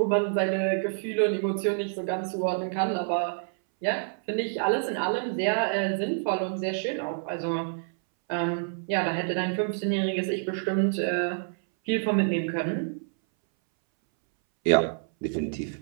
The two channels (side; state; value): left; silent; 60 dB below the other